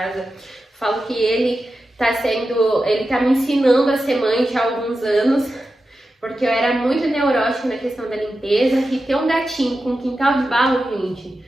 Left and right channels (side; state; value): both; normal; correlation 0.91